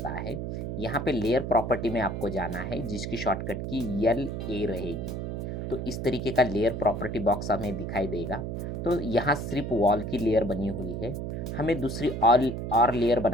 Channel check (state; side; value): noise; right; hum, 4 dB below the sound